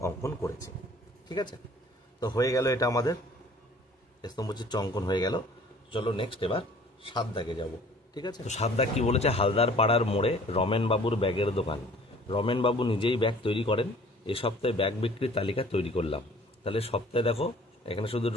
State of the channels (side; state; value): both; normal; correlation 0.51